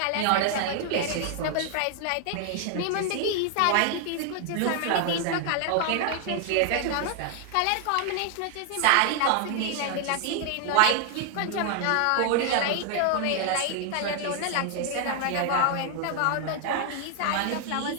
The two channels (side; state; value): both; different; correlation 0.00